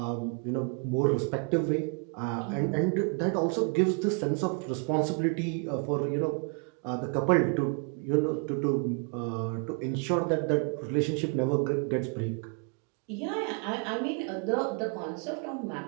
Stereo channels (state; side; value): quieter; left; 37.6 dB